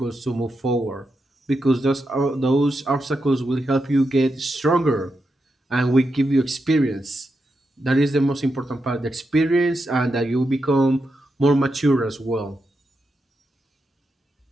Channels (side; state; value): both; normal; correlation 0.86